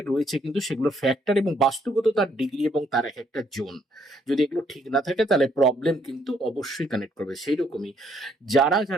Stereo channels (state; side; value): normal; both; correlation 0.69